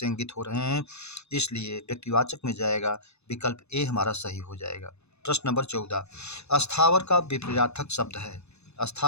इंगित हो रहे हैं, इसलिए व्यक्तिवाचक में जाएगा। विकल्प ए हमारा सही हो जाएगा। प्रश्न नंबर 14, अस्थावर का विपरीतार्थक शब्द है।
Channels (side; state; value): right; late; 0.80 ms